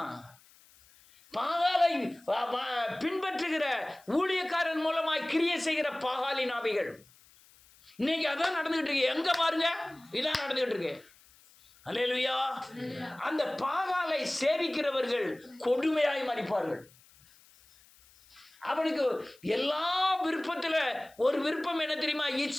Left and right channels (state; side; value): noise; left; hiss, 27 dB below the sound